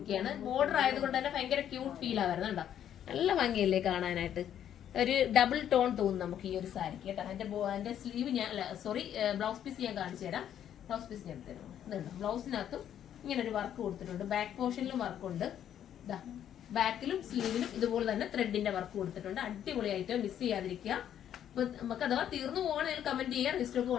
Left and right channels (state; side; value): quieter; right; 10.1 dB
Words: ബോർഡർ ആയതുകൊണ്ട് തന്നെ ഭയങ്കര ക്യൂട്ട് ഫീൽ ആവുന്നത് കണ്ടോ, നല്ല ഭംഗിയല്ലേ കാണാനായിട്ട്. ഒരു ഡബിൾ ടോൺ തോന്നും നമുക്ക് ഈ ഒരു സാരിക്ക് കേട്ടോ. അതിന്റെ സ്ലീവ് ഞാൻ ബ്ലൗസ് പീസ് ഞാൻ കാണിച്ചു തരാം. ബ്ലൗസ് പീസ് ഞാൻ തരാം. ഇതുണ്ട്, ബ്ലൗസിനകത്തും ഇങ്ങനെ ഒരു വർക്ക് കൊടുത്തിട്ടുണ്ട്. ബാക്ക് പോർഷനിലും വർക്കുണ്ട്. ഇതാ ബാക്കിലും സ്ലീവിലും ഇതുപോലെ തന്നെ ത്രെഡിന്റെ വർക്ക് കൊടുത്തിട്ടുണ്ട്. അടിപൊളിയായിട്ട് മിസ് ചെയ്യാതിരിക്കുക. അപ്പൊ നമുക്ക് അഥവാ തീർന്നു പോകണമെങ്കിൽ കമന്റ് ചെയ്യാം. റീസ്റ്റോക്ക്